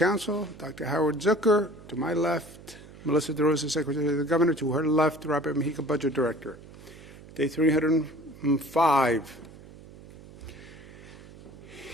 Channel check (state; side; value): noise; right; hum, 19 dB below the sound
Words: Dr. Howard Zucker. To my left, Melissa DeRosa, Secretary of the Governor. To her left, Robert Mujica, Budget Director. Day 305.